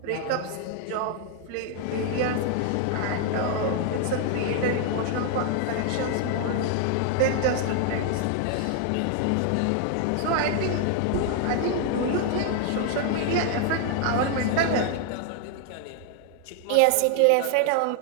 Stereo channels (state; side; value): different; both; correlation 0.00